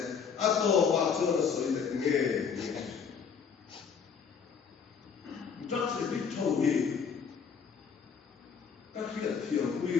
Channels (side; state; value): right; quieter; 6.4 dB